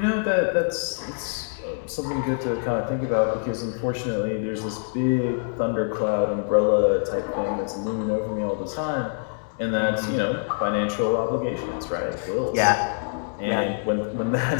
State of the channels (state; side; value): silent; right; digital silence